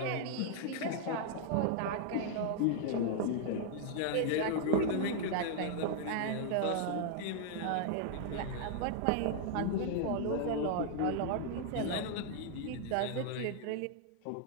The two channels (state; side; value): different; both; correlation 0.00